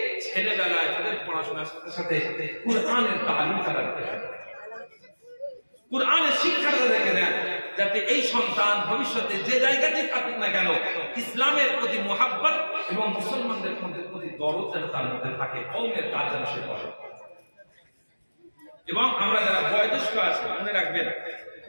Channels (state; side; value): inverted; both; correlation -1.00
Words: ছেলেবেলায় তাদের পড়াশোনার সাথে সাথে কুরআনের তালিম তাদেরকে দেন, কুরআনের শিক্ষা তাদেরকে দেন, যাতে এই সন্তান ভবিষ্যতে যে জায়গাতে থাকুক না কেন ইসলামের প্রতি মুহাব্বত এবং মুসলমানদের প্রতি দরদ যেন তার মধ্যে থাকে, কওমের কাজ যেন সে করে। এবং আমরা যারা বয়োজ্যেষ্ঠ আছি মনে রাখবেন,